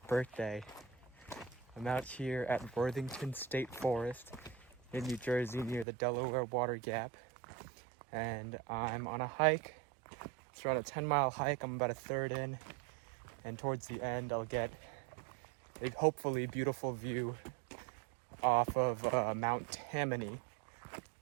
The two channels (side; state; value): left; drops out; at 5.9 s